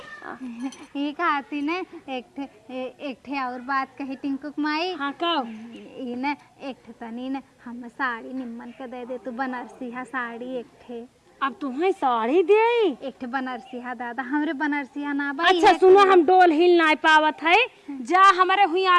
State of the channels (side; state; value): both; identical; correlation 1.00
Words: ये कहती ने एक ठे और बात कही टिंकुक माई। हाँ कब ये न एक ठे तनी न हम साड़ी निम्मन के दे दे तू बनारसी हा साड़ी एक ठे। अब तुम्हें साड़ी दे। एक ठे बनारसिया दादा, हमरे बनारसिया ना बा। अच्छा सुनो, हम डोल हिल ना पावत है, जा हमारे हुई